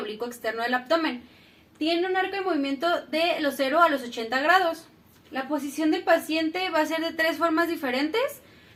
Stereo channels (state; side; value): identical; both; correlation 1.00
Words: externo del abdomen. Tiene un arco de movimiento de los 0 a los 80 grados. La posición del paciente va a ser de 3 formas diferentes.